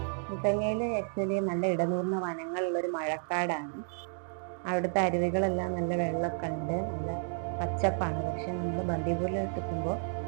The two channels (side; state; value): left; silent; digital silence